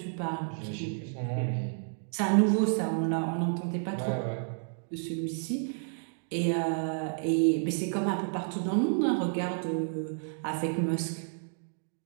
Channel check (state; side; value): silent; left; digital silence